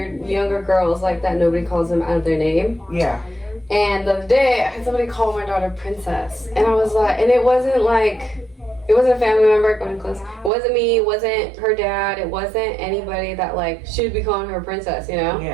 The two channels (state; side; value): drops out; left; at 10.5 s